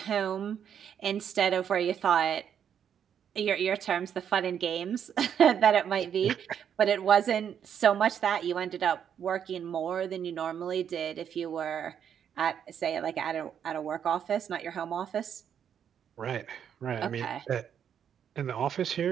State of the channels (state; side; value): quieter; left; 8.5 dB